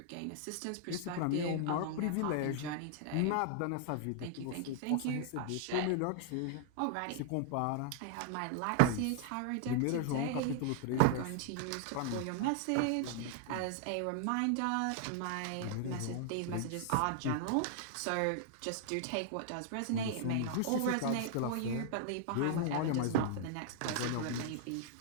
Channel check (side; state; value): both; different; correlation -0.01